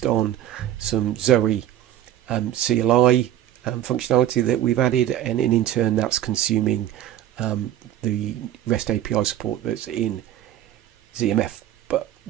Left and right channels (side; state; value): left; quieter; 11.9 dB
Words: on some Zoe CLI functionality that we've added, and in turn that's consuming the REST API support that's in ZMF. But